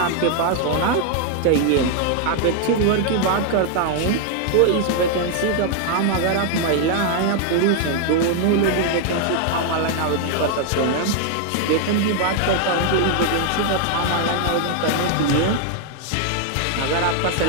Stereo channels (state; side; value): different; both; correlation 0.00